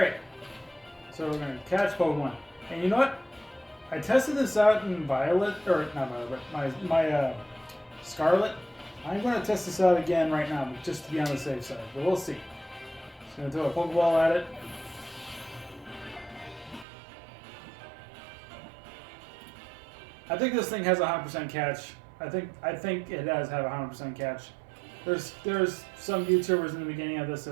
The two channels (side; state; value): left; drops out; at 16.9 s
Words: So we're going to catch Pokemon. And you know what? I tested this out in Violet, or not Violet, but my Scarlet. I'm going to test this out again right now, just to be on the safe side. But we'll see. Just going to throw a Pokeball at it. I think this thing has a 100% catch. I think it does have a 100% catch. There's some YouTubers in the beginning of this